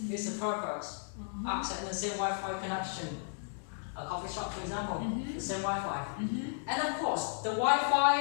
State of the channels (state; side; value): silent; right; digital silence